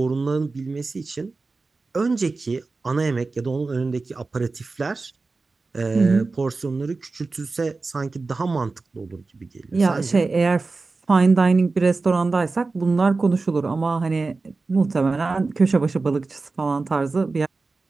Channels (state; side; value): quieter; left; 3.8 dB